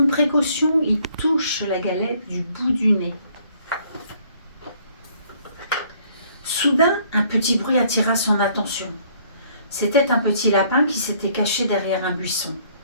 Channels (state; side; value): inverted; both; correlation -0.62